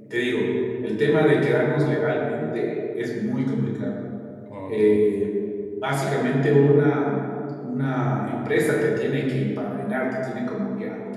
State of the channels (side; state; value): both; identical; correlation 1.00